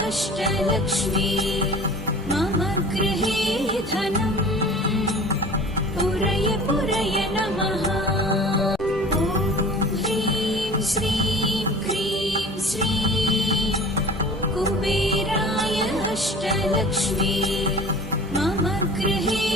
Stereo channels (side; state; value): both; normal; correlation 0.42